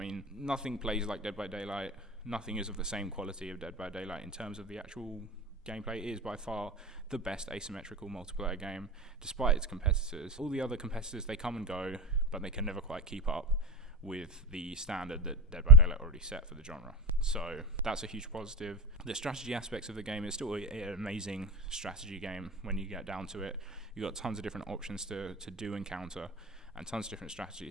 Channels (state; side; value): normal; both; correlation 0.20